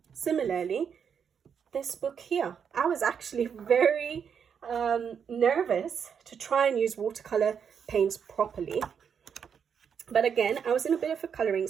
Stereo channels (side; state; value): left; quieter; 7.2 dB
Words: Similarly, this book here, I was actually very nervous to try and use watercolor paints properly. But again, I was in a bit of a coloring